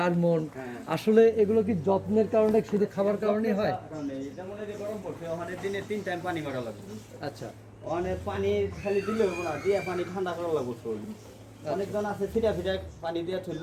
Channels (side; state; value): both; identical; correlation 1.00